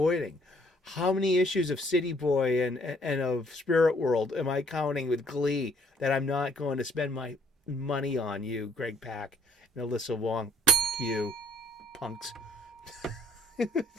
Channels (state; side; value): normal; both; correlation 0.61